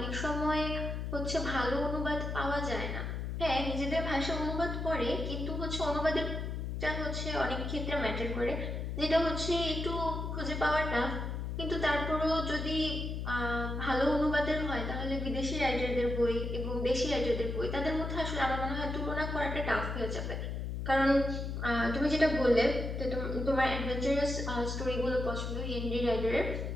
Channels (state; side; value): noise; left; hum, 3 dB below the sound